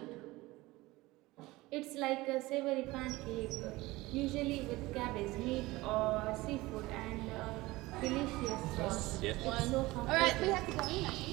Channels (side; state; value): left; quieter; 20.0 dB